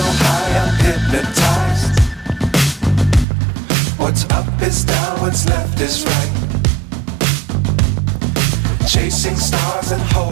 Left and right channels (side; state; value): left; drops out; at 3.2 s